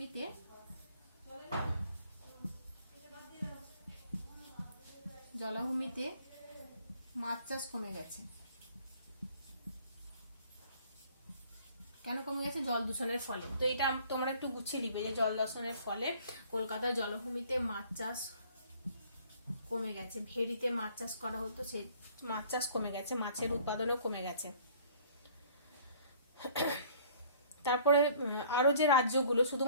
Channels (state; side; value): inverted; both; correlation -0.55